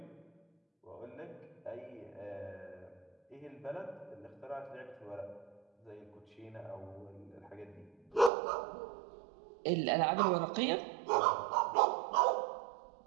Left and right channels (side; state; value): left; drops out; at 8.3 s